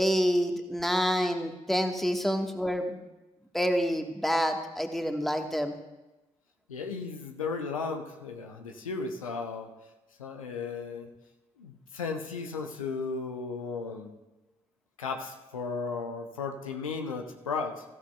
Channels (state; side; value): normal; both; correlation 0.78